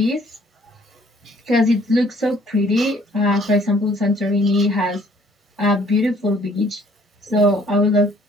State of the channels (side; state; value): both; normal; correlation 0.59